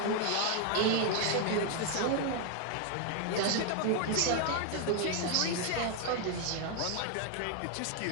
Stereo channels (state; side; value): different; both; correlation 0.01